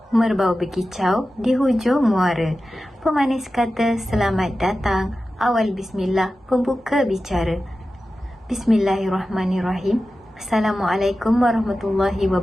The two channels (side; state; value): both; normal; correlation 0.94